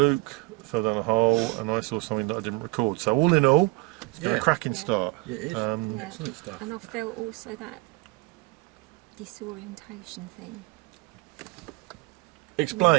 fell down a hole, and I saw something that I didn't record. So, all in all, it's been a cracking start. Yeah, it is. Excellent stuff. And I felt also that disorientation thing.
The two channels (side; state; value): left; quieter; 24.5 dB